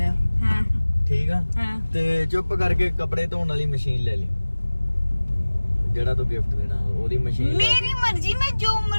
ਆ हाँ ਠੀਕ ਆ। हाँ ਤੇ ਚੁੱਪ ਕਰਕੇ ਕੱਪੜੇ ਧੋਣ ਵਾਲੀ ਮਸ਼ੀਨ ਲੈ ਲਈ, ਜਿਹੜਾ ਤੂੰ ਗਿਫਟ ਦੇਣਾ ਉਹਦੀ ਮਸ਼ੀਨ। मेरी मर्जी, मैं जो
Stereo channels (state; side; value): inverted; both; correlation -1.00